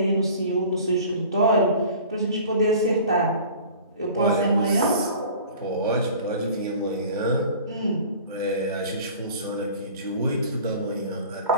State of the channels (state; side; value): inverted; both; correlation -0.44